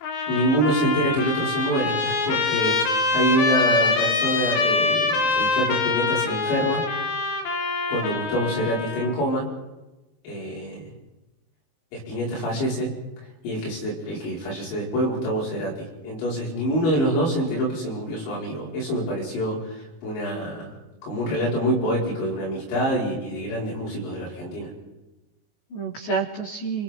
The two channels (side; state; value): right; late; 19 ms